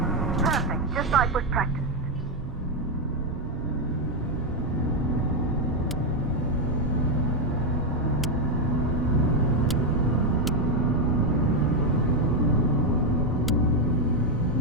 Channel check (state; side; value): normal; both; correlation 0.04